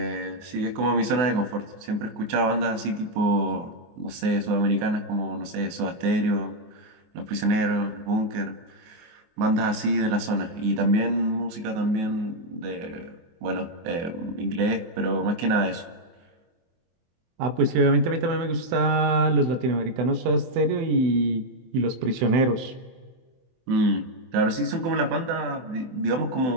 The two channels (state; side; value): late; left; 24 ms